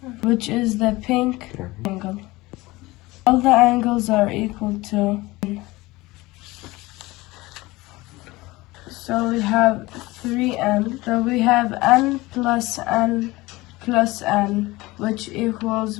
which is the pink angle. All the angles are equal to n. So we have 3n. So we have n plus n plus n, which equals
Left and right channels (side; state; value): right; quieter; 20.5 dB